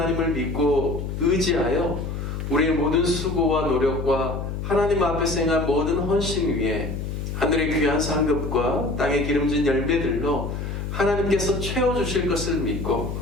믿고 의지하여 우리의 모든 수고와 노력과 하나님 앞에서 행한 모든 헌신 위에 하늘의 귀한 상급과 땅의 기름진 열매들로 하나님께서 채워주실 것을 믿고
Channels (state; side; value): noise; left; hum, 5 dB below the sound